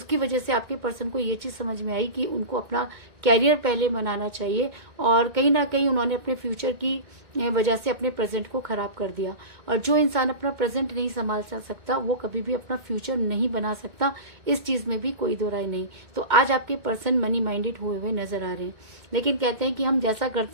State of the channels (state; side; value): late; left; 2.2 ms